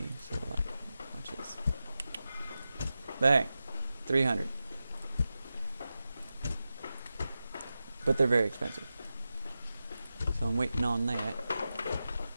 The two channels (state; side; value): inverted; both; correlation -0.92